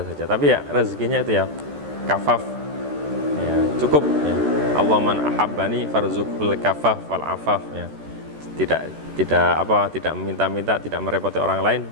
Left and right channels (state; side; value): late; left; 14 ms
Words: saja. Tapi ya rezekinya itu ya kafaf ya, cukup ya. Allah man ahabbani farzuqul kafaf wal afaf ya. Tidak meminta-minta, tidak merepoti orang lain,